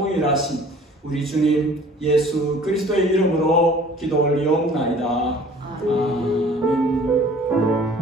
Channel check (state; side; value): normal; both; correlation 0.50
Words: 우리 주님 예수 그리스도의 이름으로 기도 올리옵나이다. 아멘.